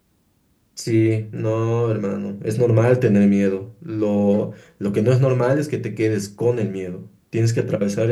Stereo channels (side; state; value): both; identical; correlation 1.00